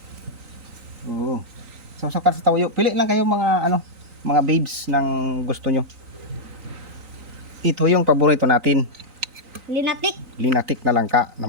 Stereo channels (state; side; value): late; left; 3.9 ms